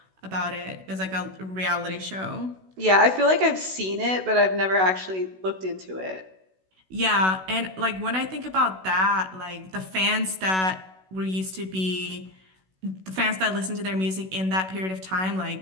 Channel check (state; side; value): late; left; 16 ms